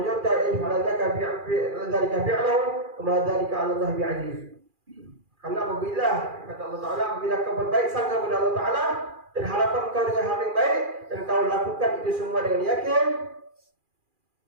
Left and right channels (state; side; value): late; left; 2.4 ms